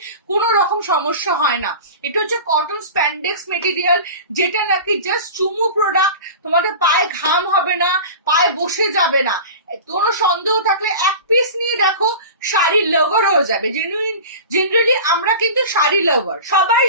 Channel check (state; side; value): inverted; both; correlation -0.34